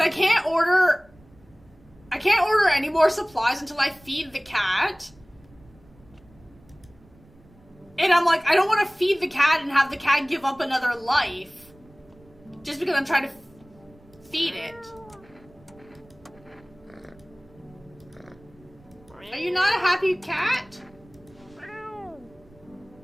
can't order any more supplies until I feed the cat. And I'm like, I don't want to feed the cat and have the cat give up another life. Just because I'm trying to feed it. Are you not a happy cat? Are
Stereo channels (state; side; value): noise; right; rumble, 27 dB below the sound